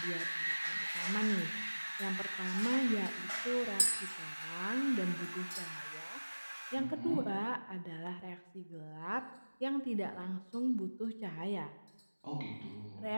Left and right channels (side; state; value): both; inverted; correlation -1.00